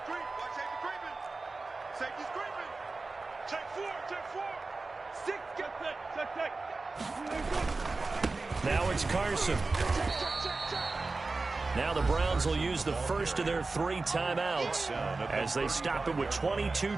creep. Watch safety creeping. Safety's creeping. Check 4. 6. Get set. Check. Now it's Carson. Now the Browns will use the first of their 3 timeouts as they stop it with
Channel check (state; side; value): quieter; left; 3.6 dB